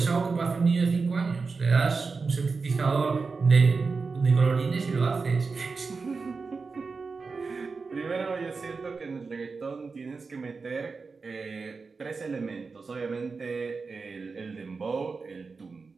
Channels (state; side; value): quieter; left; 4.5 dB